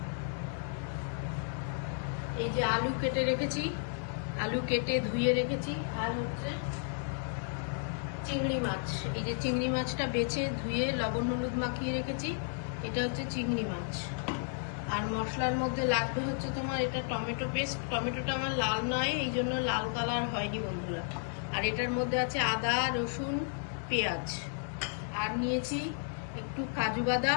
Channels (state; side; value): silent; right; 56 dB below the other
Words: এই যে আলু কেটে রেখেছি, আলু কেটে ধুয়ে রেখেছি। আর হচ্ছে চিংড়ি মাছ, এই যে চিংড়ি মাছটা বেছে ধুয়ে লবণ হলুদ মাখিয়ে রেখেছি। এটা হচ্ছে চিংড়ি মাছ। আর মশলার মধ্যে লাগবে হচ্ছে তোমার এটা টমেটো পেস্ট। টমেটোটা আমার লাল নয়, এই জন্য লাল কালার হয়নি বন্ধুরা। আর এটার মধ্যে আছে আদা, রসুন, পেঁয়াজ। আর নিয়েছি একটু কাজু